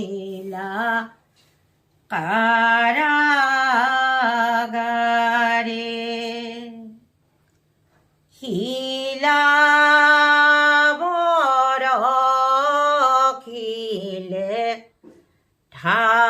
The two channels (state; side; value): identical; both; correlation 1.00